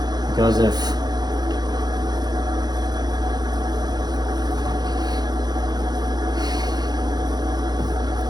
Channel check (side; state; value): left; late; 0.20 ms